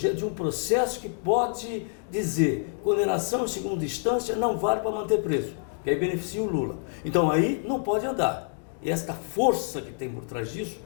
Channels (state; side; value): silent; right; 60 dB below the other